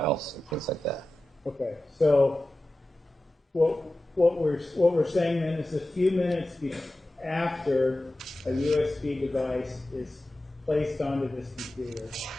things like that. Okay, so what we're saying then is a few minutes after a USB device is placed onto this computer,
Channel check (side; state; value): both; normal; correlation 0.94